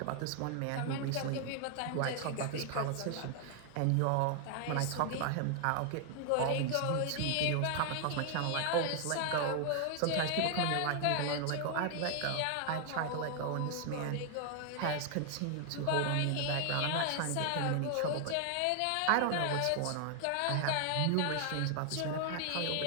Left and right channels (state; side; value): different; both; correlation 0.00